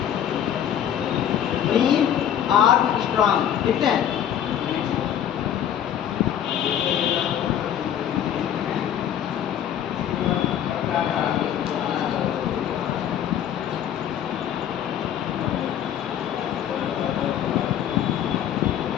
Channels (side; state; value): right; quieter; 9.9 dB